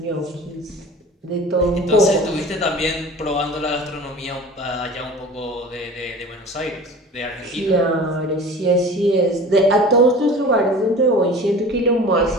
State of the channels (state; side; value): normal; both; correlation 0.40